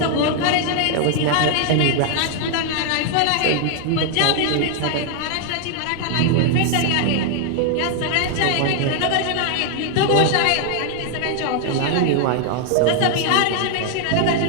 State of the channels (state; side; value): different; both; correlation 0.00